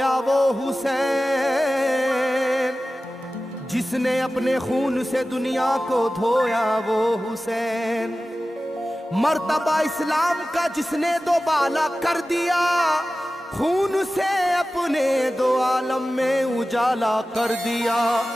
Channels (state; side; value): normal; both; correlation 0.95